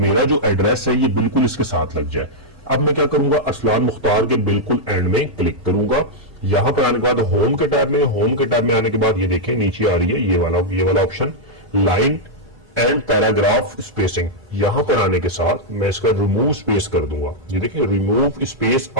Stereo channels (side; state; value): both; normal; correlation -0.05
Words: जो एड्रेस है ये बिल्कुल इसके साथ लग जाए। अब मैं क्या करूंगा, अरसलान मुख्तार के बिल्कुल एंड में क्लिक करूंगा। यहां पर आने के बाद होम के टैब में आने के बाद ये देखें नीचे आ रही है ये वाला option, line and paragraph spacing. यहां पर आने के साथ मैं इसका रिमूव स्पेस कर दूंगा। ये देखिए, रिमूव स्पेस